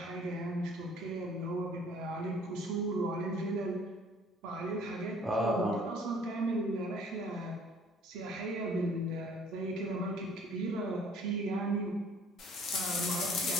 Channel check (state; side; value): normal; both; correlation 0.55